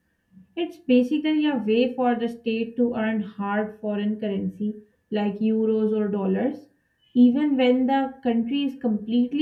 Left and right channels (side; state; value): both; identical; correlation 1.00